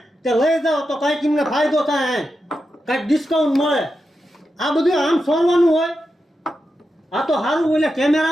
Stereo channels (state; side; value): normal; both; correlation 0.88